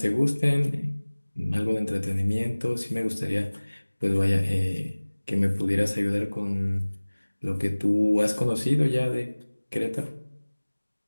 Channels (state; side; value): inverted; both; correlation -1.00